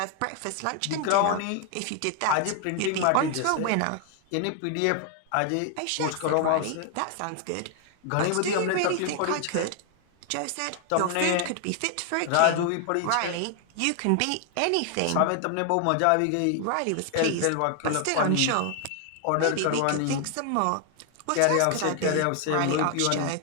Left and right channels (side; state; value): both; different; correlation 0.00